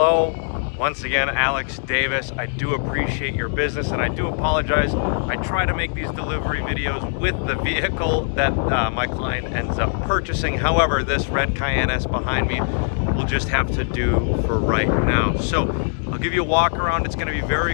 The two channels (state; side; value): silent; right; digital silence